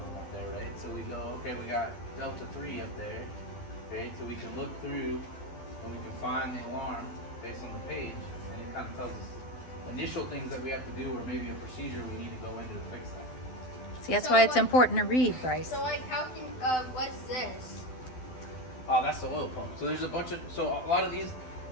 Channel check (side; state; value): right; late; 12 ms